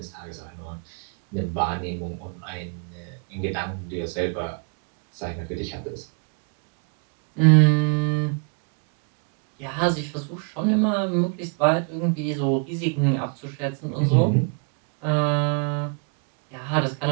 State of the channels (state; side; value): quieter; left; 38.5 dB